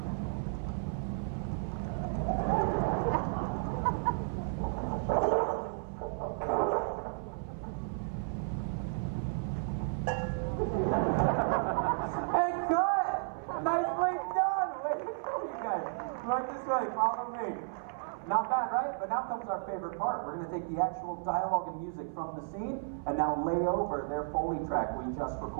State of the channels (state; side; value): silent; left; 56 dB below the other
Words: Not bad, right? But now comes our favorite part. We're going to take the actual dialogue and music from the scene and now lay over their Foley track we just